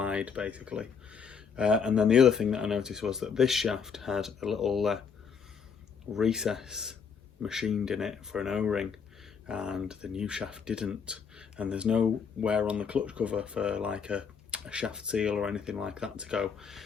basically. And then the other thing that I noticed was that this shaft had a little recess machined in it for an O-ring, and the new shaft didn't. And there's no wear on the clutch cover for like a shaft seal or anything like that to go.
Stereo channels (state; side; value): quieter; right; 6.3 dB